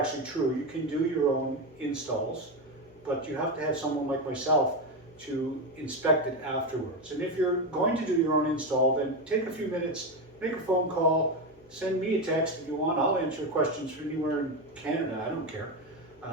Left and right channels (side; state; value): both; normal; correlation 0.13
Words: true. You can do your own installs, but you have to have someone like myself to inspect it afterwards. And if you're going to do your own install, then take a few minutes, make a phone call, send me a text if you want. I'll answer questions from anywhere in Canada, I don't care.